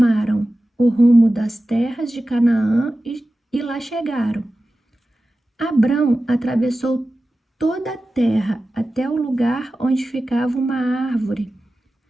o rumo das terras de Canaã e lá chegaram. Abrão atravessou toda a terra até o lugar onde ficava uma árvore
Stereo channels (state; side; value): normal; both; correlation 0.95